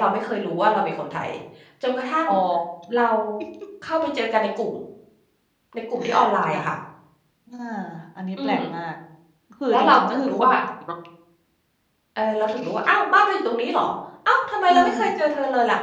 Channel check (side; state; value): both; identical; correlation 1.00